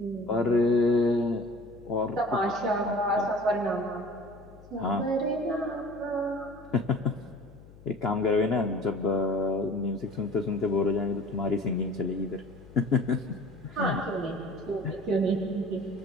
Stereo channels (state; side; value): noise; left; hum, 21 dB below the sound